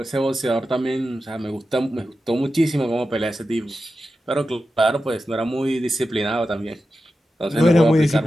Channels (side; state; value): both; normal; correlation 0.91